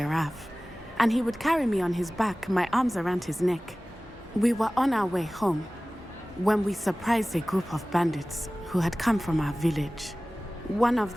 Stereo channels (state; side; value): normal; both; correlation 0.98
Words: and he would carry me on his back, my arms around his neck. We were on our way home when we surprised a group of bandits who had come from our village. One of